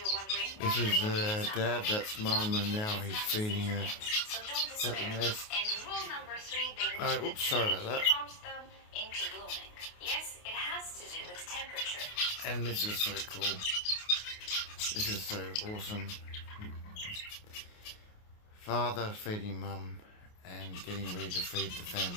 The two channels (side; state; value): right; late; 28 ms